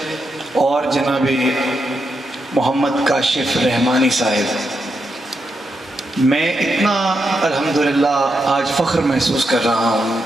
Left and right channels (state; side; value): normal; both; correlation 0.84